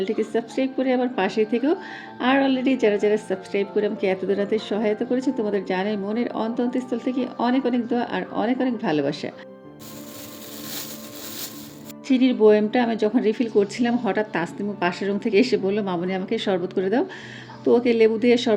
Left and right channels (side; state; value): both; identical; correlation 1.00